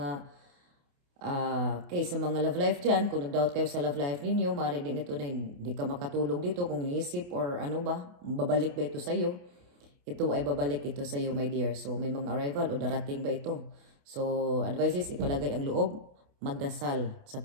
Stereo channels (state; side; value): late; left; 28 ms